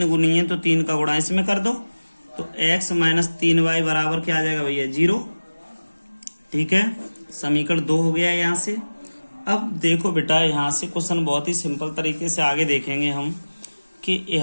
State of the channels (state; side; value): inverted; both; correlation -1.00